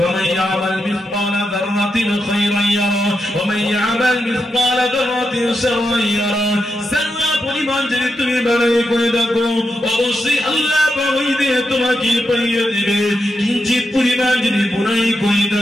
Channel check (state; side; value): normal; both; correlation 0.86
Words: ইয়ামাল মিসকালা যাররাতিন খায়রান ইয়ারা ওয়া মান ইয়ামাল মিসকালা যাররাতিন শাররান ইয়ারা। সারা পরিমাণ যদি তুমি বাড়াই করে দেখো, অবশ্যই আল্লাহ পাক ওই দিনে তোমাকে পাইয়ে দিবে। কিঞ্চিত পরিমাণ যদি বুরাই করে